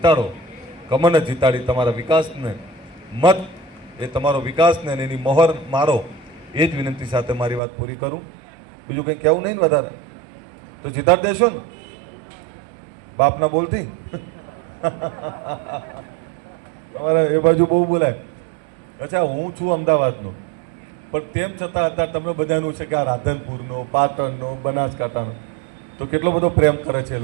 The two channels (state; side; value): drops out; left; at 7.6 s